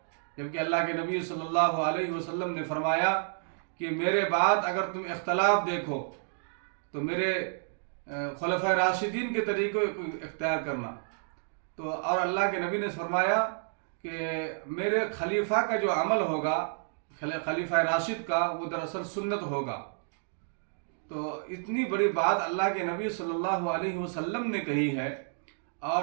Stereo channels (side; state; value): left; silent; digital silence